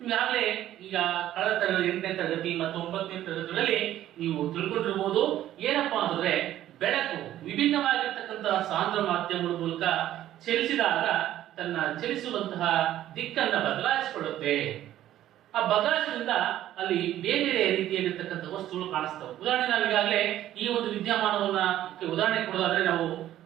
ಈಗಾಗಲೇ ಈಗ ಕಳೆದ ತರಗತಿ 8ನೇ ತರಗತಿ ಮತ್ತು 9ನೇ ತರಗತಿಗಳಲ್ಲಿ ನೀವು ತಿಳ್ಕೊಂಡಿರ್ಬೋದು. ಏನಪ್ಪಾ ಅಂತಂದ್ರೆ ಬೆಳಕು ವಿಭಿನ್ನವಾಗಿರ್ತಕ್ಕಂತಹ ಸಾಂದ್ರ ಮಾಧ್ಯಮಗಳ ಮೂಲಕ ಚಲಿಸಿದಾಗ ತನ್ನ ಚಲಿಸುವಂತಹ ದಿಕ್ಕನ್ನ ಬದಲಾಯಿಸಿಕೊಳ್ಳುತ್ತೆ. ಆ ಬದಲಾಯಿಸೋದ್ರಿಂದ ಅಲ್ಲಿ ಬೇರೆ ಬೇರೆ ರೀತಿಯಾಗಿರ್ತಕ್ಕಂಥ ವಸ್ತುಗಳು ಕಾಣಿಸ್ತವೆ. ಉದಾಹರಣೆ ನಾವು ಈಗಾಗಲೇ ಈ ಒಂದು ವಿದ್ಯಮಾನವನ್ನ ಉದಾಹರಣೆ ಕೊಡೋದಾದ್ರೆ, ನಾವು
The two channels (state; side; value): quieter; left; 12.9 dB